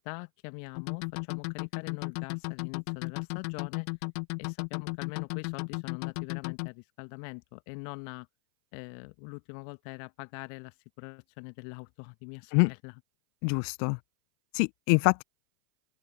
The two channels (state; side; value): silent; right; 55 dB below the other